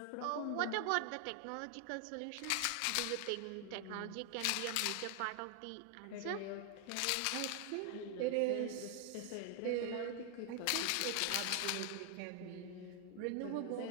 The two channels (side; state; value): both; different; correlation 0.00